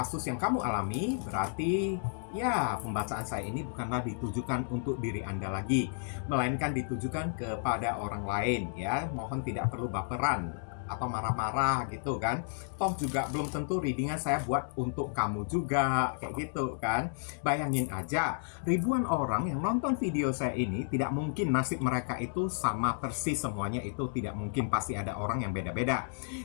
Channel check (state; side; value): silent; right; digital silence